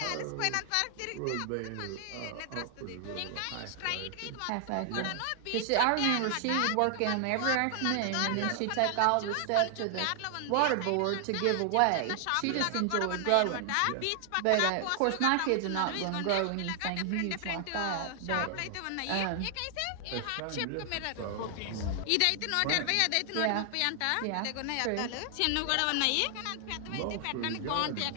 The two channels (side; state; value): both; different; correlation 0.00